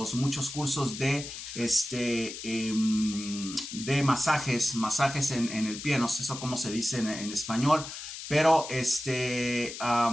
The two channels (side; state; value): left; noise; hiss, 10 dB below the sound